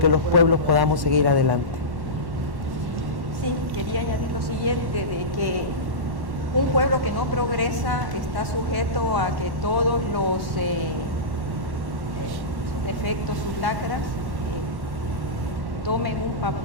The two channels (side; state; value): left; late; 1.1 ms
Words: los pueblos podamos seguir adelante. Sí, quería añadir lo siguiente, de que un pueblo que no progresa está sujeto a que todos los sus defectos, sus lacras, tomen un